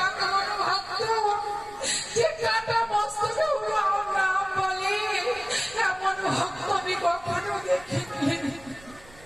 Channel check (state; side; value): noise; right; rumble, 23 dB below the sound